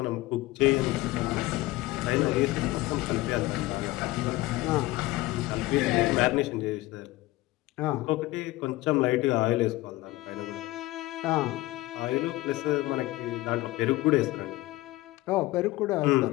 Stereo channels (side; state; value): right; quieter; 18.6 dB